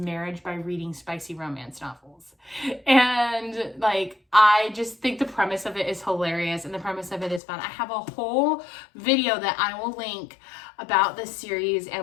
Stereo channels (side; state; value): right; drops out; at 7.4 s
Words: by reading spicy romance novels. And I just think the premise of it is hilarious, and the premise of it is fun. I have a whole video that I will link about this series